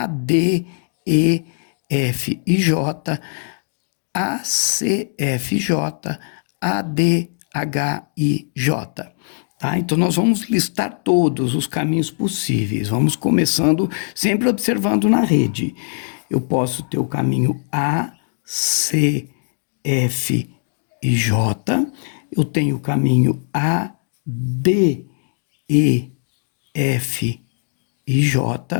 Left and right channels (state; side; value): silent; right; digital silence